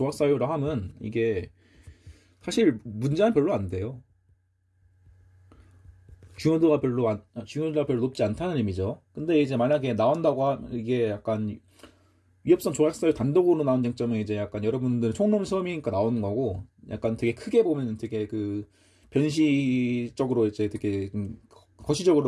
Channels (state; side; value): identical; both; correlation 1.00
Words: 하면 이게 사실 문제는 별로 안 돼요. 중요도가 별로 높지 않다는 의미죠. 근데 이제 만약에 나온다고 하면 이게 약간 위협성 조각사유 단독으로 나온 쟁점은 이제 약간 여러분들 총론 시험이니까 나오는 거고, 약간 되게 크게 보면 되게 그 변시적으로 이제 되게